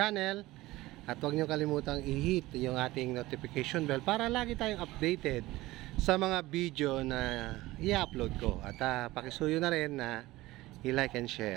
at huwag nyo kalimutang i-hit yung ating notification bell para lagi tayong updated sa mga video na i-upload ko at pakisuyo na rin na i-like and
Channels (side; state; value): left; quieter; 18.4 dB